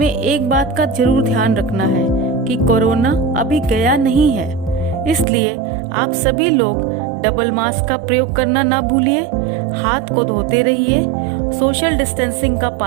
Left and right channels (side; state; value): left; drops out; at 5.2 s